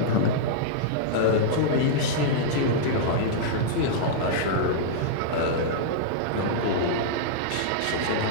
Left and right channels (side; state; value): both; different; correlation -0.02